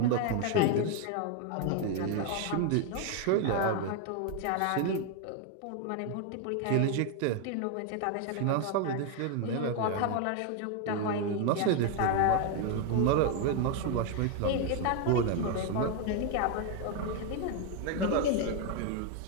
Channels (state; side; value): different; both; correlation 0.01